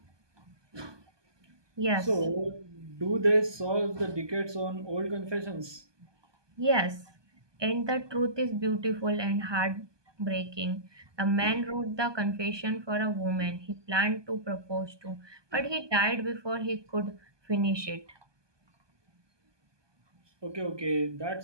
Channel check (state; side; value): late; left; 1.2 ms